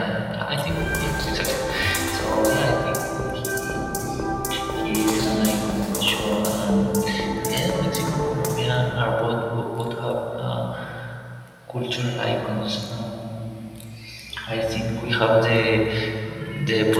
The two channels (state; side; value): identical; both; correlation 1.00